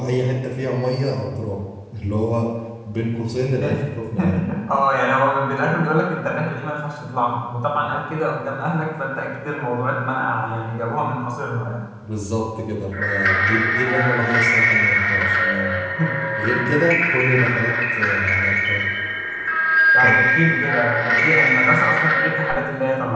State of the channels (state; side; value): identical; both; correlation 1.00